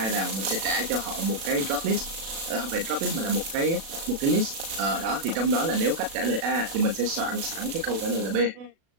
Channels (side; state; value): left; late; 36 ms